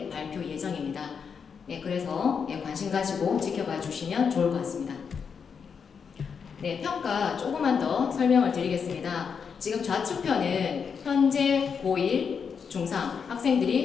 발표 예정입니다. 그래서 관심 가지고 지켜봐 주시면 좋을 것 같습니다. 평가 조금만 더 설명을 드리겠습니다. 지금 좌측편은 현재 고1, 중3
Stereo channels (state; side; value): quieter; right; 6.4 dB